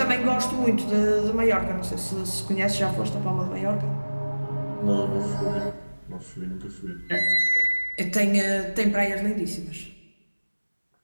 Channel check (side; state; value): both; inverted; correlation -1.00